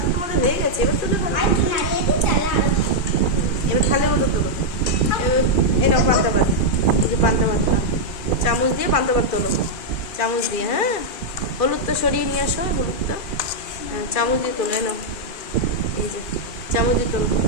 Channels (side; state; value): right; late; 2.4 ms